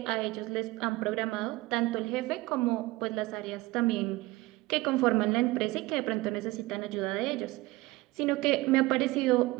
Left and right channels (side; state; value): left; quieter; 20.0 dB